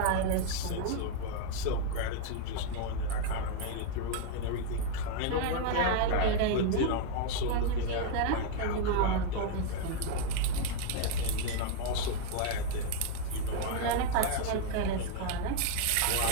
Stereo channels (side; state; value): both; different; correlation 0.00